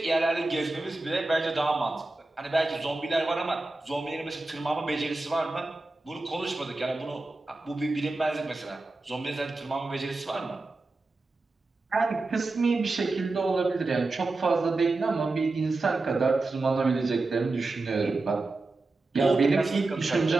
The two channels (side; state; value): left; quieter; 3.3 dB